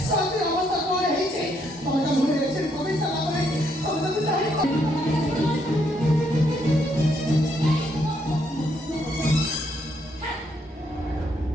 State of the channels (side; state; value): both; normal; correlation 0.73